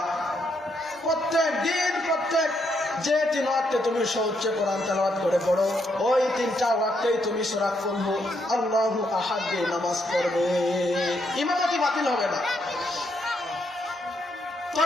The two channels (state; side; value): normal; both; correlation 0.76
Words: প্রত্যেক দিন, প্রত্যেক যে 3 ওয়াক্তে তুমি সউচ্চ কোরআন তেলাওয়াত করে পড়ো, ওই 3টা ওয়াক্তেই তুমি সূরা কুল হু আল্লাহু আহাদ দিয়ে নামাজ পড়বে, ইমামতি বাতিল হবে না।